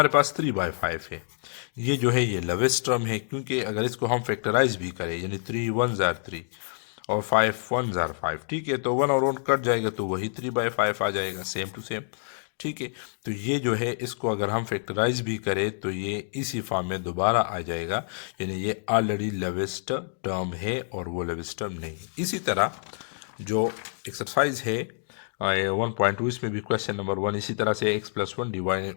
पास 3/5 है, ये जो है ये लवेस्ट टर्म है क्योंकि अगर इसको हम फैक्टराइज भी करें यानी 3 1 जार 3 और 5 1 जार 5, ठीक है, तो 1 और 1 कट जाएगा तो वही 3/5 आ जाएगा, सेम टू सेम। ठीक है, तो ये जो है इसको अगर हम फैक्टराइज भी करें तो ये इसी फॉर्म में दोबारा आ जाएगा, यानी ये ऑलरेडी लवेस्ट टर्म है और वो लवेस्ट टर्म नहीं। इसी तरह जो एक्सरसाइज है 1.2, इसमें भी क्वेश्चन नंबर 1 इसी तरह से x+1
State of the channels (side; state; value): right; silent; digital silence